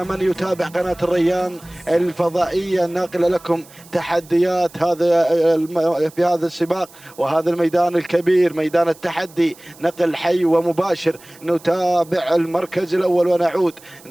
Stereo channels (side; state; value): right; noise; hiss, 23 dB below the sound